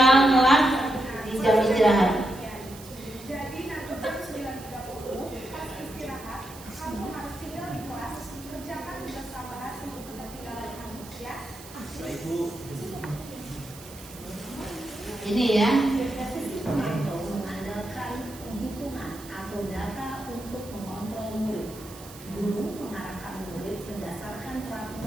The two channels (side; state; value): right; noise; hiss, 17 dB below the sound